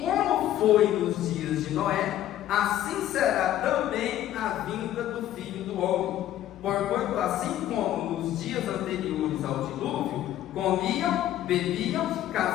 como foi nos dias de Noé, assim será também a vinda do Filho do Homem. Porquanto, assim como nos dias anteriores ao dilúvio, comiam, bebiam,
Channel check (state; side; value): quieter; right; 12.6 dB